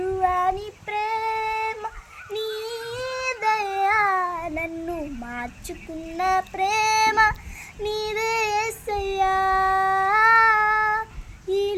ప్రేమ నీదయ్యా, నన్ను మార్చుకున్న ప్రేమ నీదేసయ్యా. ఈ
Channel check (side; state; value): both; identical; correlation 1.00